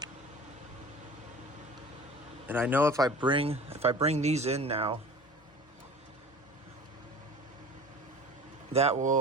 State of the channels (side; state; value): both; normal; correlation 0.40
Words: And I know if I bring these in now, that